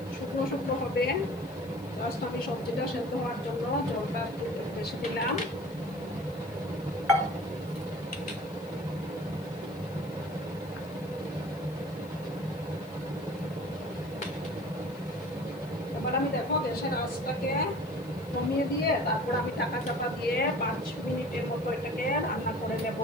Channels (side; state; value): left; noise; hiss, 24 dB below the sound